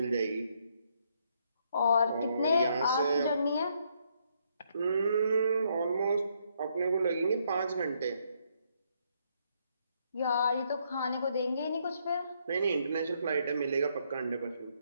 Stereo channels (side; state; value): both; inverted; correlation -0.72